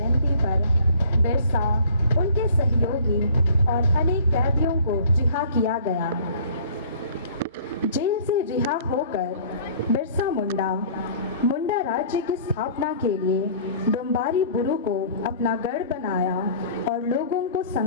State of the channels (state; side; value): inverted; both; correlation -0.50